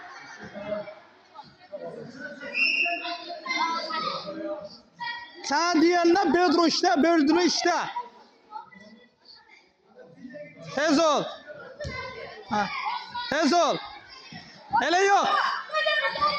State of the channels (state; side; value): identical; both; correlation 1.00